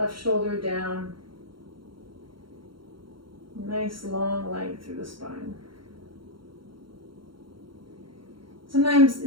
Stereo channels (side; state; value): left; late; 0.73 ms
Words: shoulder down. Nice long length through the spine. Sometimes